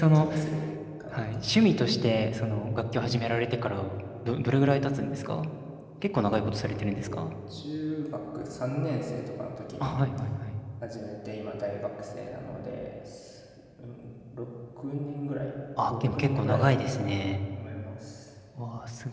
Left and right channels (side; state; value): both; identical; correlation 1.00